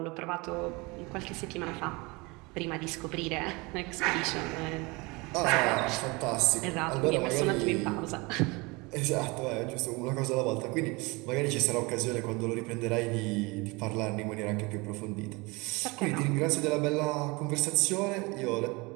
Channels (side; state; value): left; quieter; 25.8 dB